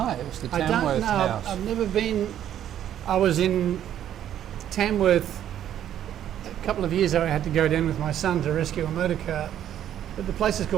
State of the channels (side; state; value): left; quieter; 10.8 dB